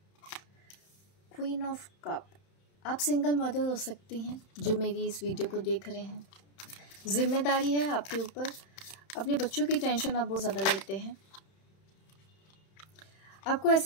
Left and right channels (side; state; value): right; late; 31 ms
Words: क्वीन ऑफ कप, आप सिंगल मदर हो सकती हैं जो मेरी इस वीडियो को देख रहे हैं। जिम्मेदारी है आपके ऊपर, अपने बच्चों की टेंशन आप बहुत ज़्यादा लेते हैं। आपको